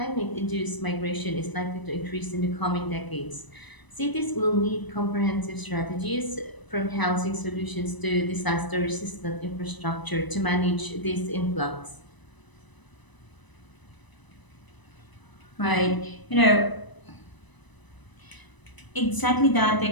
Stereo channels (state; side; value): late; right; 1.0 ms